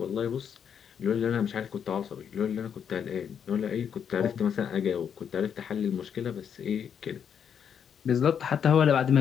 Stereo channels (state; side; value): quieter; right; 7.9 dB